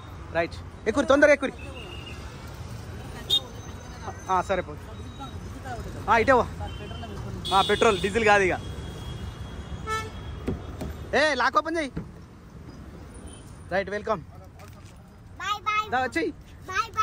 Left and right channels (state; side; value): identical; both; correlation 1.00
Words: రైట్, ఎక్కురి, తొందరగా ఎక్కురి. సరే పో, ఇటే పెట్రోల్ డీజిల్ కాదు ఇక. లాక్ ఓపెన్ చెయ్యి. Right, welcome. వచ్చేయి.